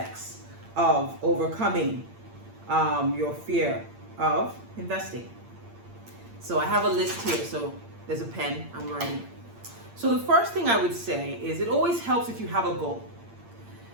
of overcoming your fear of investing. So I have a list here, so there's a pen, I'm writing. So the first thing I would say is it always helps if you have a goal.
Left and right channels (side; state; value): left; late; 8.7 ms